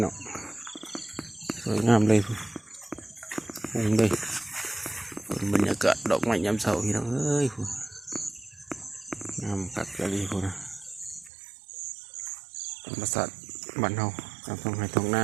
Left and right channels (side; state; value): left; drops out; at 11.3 s